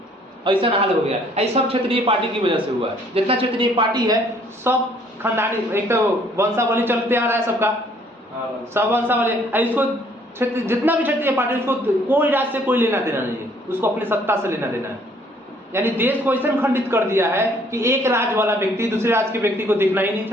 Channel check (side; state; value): both; normal; correlation 0.61